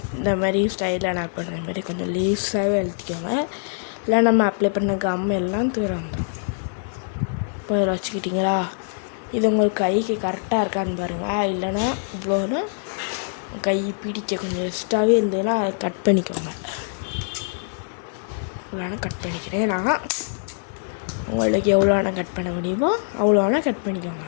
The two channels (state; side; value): silent; right; digital silence